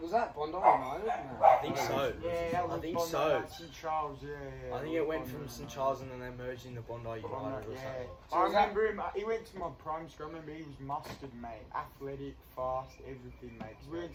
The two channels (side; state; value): both; identical; correlation 1.00